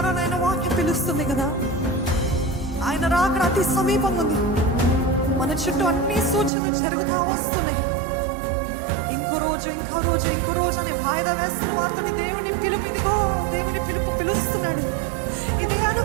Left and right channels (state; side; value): drops out; left; at 6.5 s